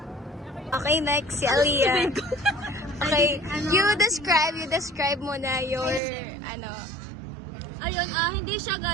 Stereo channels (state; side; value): drops out; left; at 6.0 s